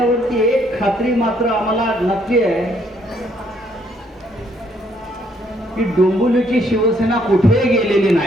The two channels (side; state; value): both; normal; correlation 0.69